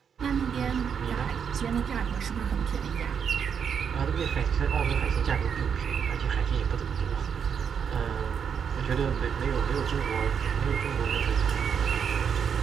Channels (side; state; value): left; quieter; 7.3 dB